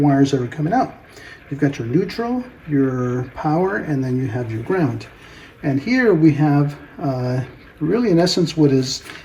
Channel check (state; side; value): identical; both; correlation 1.00